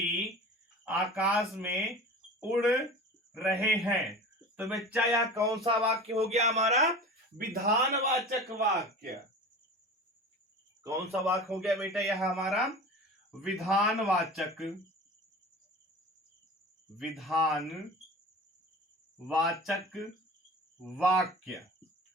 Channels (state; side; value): normal; both; correlation 0.35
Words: आकाश में उड़ रहे हैं। तो बच्चा यह कौन सा वाक्य हो गया हमारा, विधानवाचक वाक्य। कौन सा वाक्य हो गया बेटा, यह हमारा विधानवाचक वाक्य।